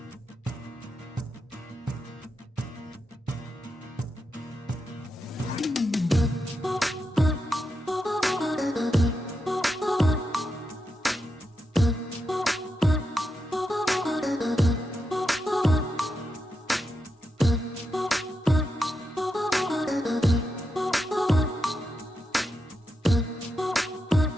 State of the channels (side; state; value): both; normal; correlation 0.86